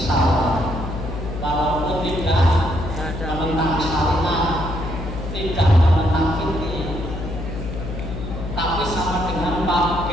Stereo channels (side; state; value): left; noise; hum, 7 dB below the sound